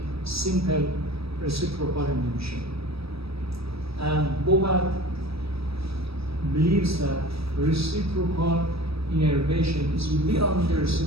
simple reciprocal inhibition. And Bobat believes that reciprocal innervation is beyond the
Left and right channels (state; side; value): late; left; 0.77 ms